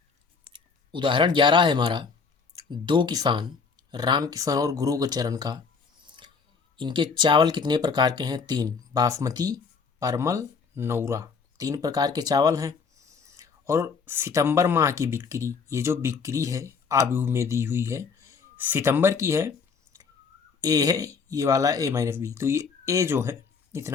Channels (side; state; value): right; quieter; 5.3 dB